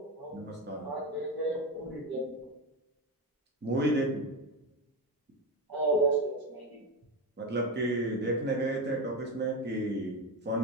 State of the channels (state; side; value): normal; both; correlation 0.16